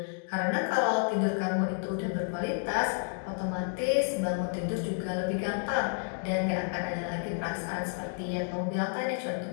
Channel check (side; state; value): right; silent; 57 dB below the other